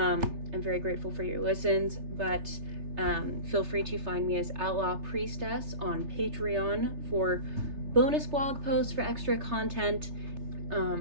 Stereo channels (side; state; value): left; late; 3.3 ms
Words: very grateful for your listens. But feel free to find me as Outlaw Priestess on Patreon for bonus blog posts, for extra content.